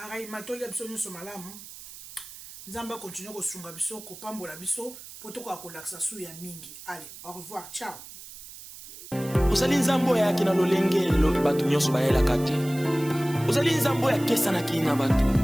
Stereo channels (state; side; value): noise; right; hiss, 15 dB below the sound